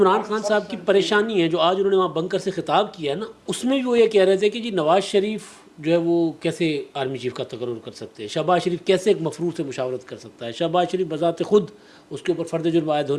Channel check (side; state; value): both; identical; correlation 1.00